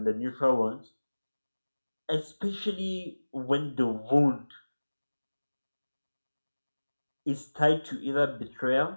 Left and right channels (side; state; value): both; inverted; correlation -1.00